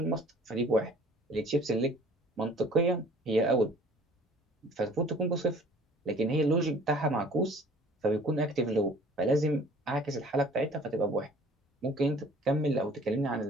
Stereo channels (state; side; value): normal; both; correlation 0.51